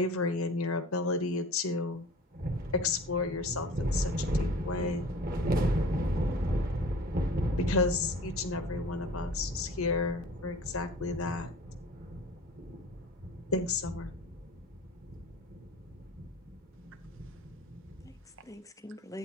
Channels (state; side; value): normal; both; correlation 0.43